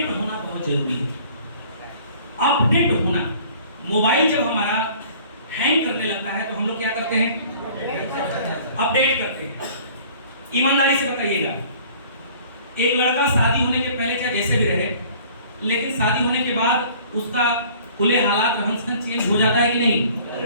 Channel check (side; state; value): both; inverted; correlation -0.51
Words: होना बहुत जरूरी है। अपडेट होना, मोबाइल जब हमारा हैंग करने लगता है तो हम लोग क्या करते हैं? अपडेट करते हैं। ईमानदारी से बताइएगा, एक लड़का शादी होने के पहले चाहे जैसे भी रहे, लेकिन शादी होने के बाद उसका खुले हालात रहन सहन चेंज हो जाता है कि नहीं?